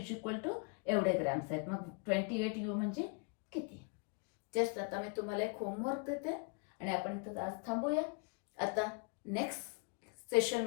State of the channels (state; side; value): quieter; right; 35.0 dB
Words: इक्वल टू एवढे ग्रॅम्स आहेत. मग 28 यू म्हणजे किती? जस्ट आता मी तुम्हाला एक होमवर्क देते आणि आपण इथं आज थांबूया. आता नेक्स्ट